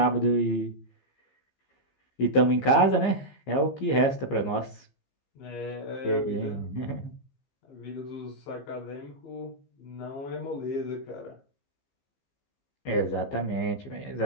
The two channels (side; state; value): right; late; 15 ms